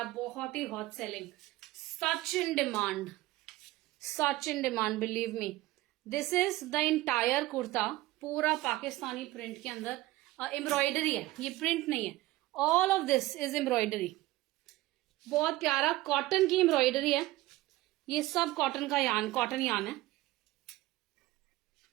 बहुत ही hot selling. Such in demand believe me. This is the entire kurta. पूरा पाकिस्तानी प्रिंट के अंदर एम्ब्रॉयडरी है. ये प्रिंट नहीं है. All of this is embroidery. बहुत प्यारा कॉटन की एम्ब्रॉयडरी है. ये सब कॉटन यान है.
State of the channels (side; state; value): left; quieter; 17.9 dB